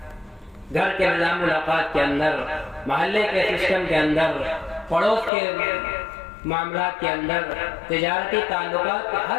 گھر کے نظام ملاقات کے اندر، محلے کے سسٹم کے اندر، پڑوس کے معاملات کے اندر، تجارتی تعلقات،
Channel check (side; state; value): right; drops out; at 5.3 s